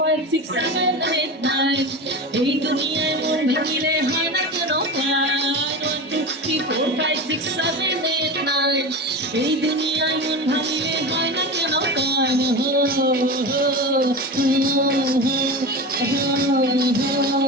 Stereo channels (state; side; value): normal; both; correlation 0.26